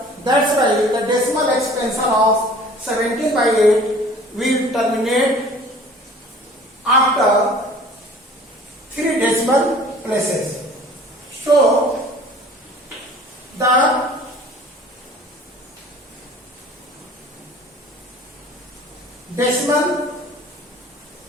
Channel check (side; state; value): both; normal; correlation 0.48